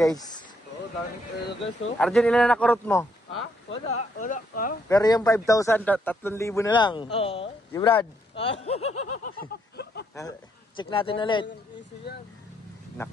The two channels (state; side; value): normal; both; correlation 0.73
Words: Oo, daming pera guys oh. Arjun, ilan na nakurot mo? Ha? Wala. Ha? Pero yung 5,000, 3,000 na lang. Oo. Si Brad. Check natin ulit. Easy yan.